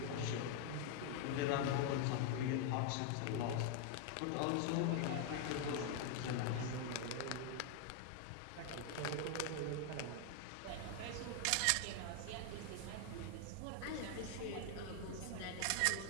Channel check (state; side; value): different; both; correlation 0.00